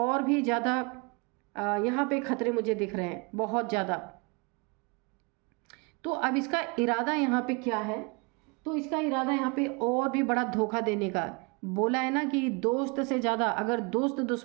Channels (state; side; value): quieter; left; 30.4 dB